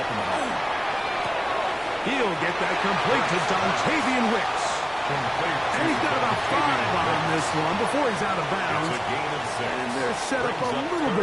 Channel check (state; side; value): identical; both; correlation 1.00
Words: him at all. He'll get that complete to Dontavian Wicks. And he's got about 5 on this one before he's out of bounds. And they're set up a little